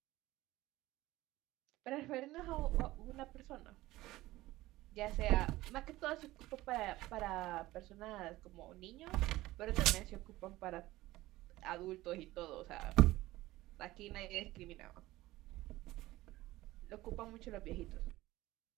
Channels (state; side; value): quieter; left; 17.5 dB